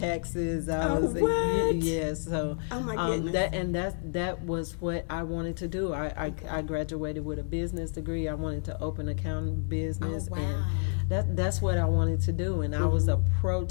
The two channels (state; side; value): silent; right; digital silence